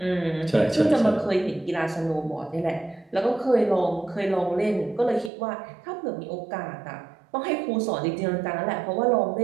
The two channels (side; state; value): left; drops out; at 5.3 s